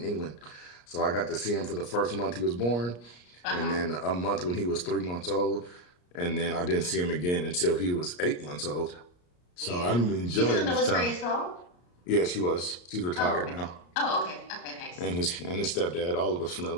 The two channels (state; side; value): late; right; 34 ms